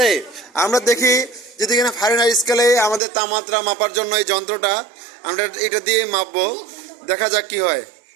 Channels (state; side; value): drops out; left; at 3.0 s